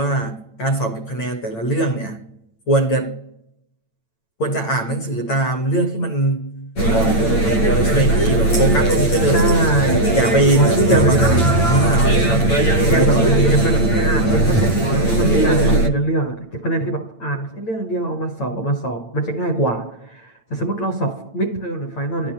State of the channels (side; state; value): right; late; 8.9 ms